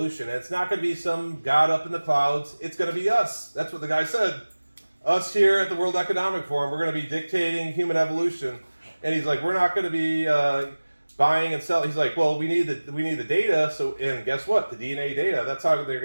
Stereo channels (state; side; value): inverted; both; correlation -1.00